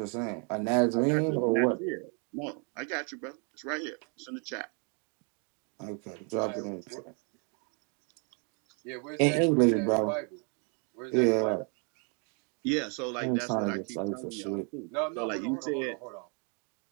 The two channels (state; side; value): quieter; left; 37.6 dB